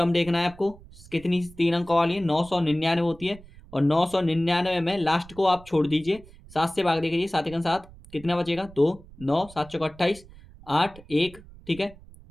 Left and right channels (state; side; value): noise; right; rumble, 21 dB below the sound